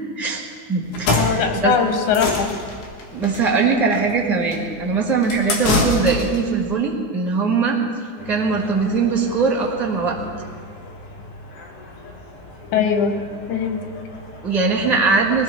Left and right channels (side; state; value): right; late; 9.7 ms